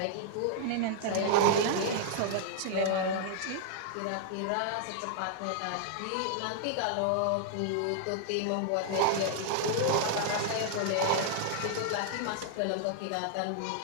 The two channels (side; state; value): both; different; correlation -0.01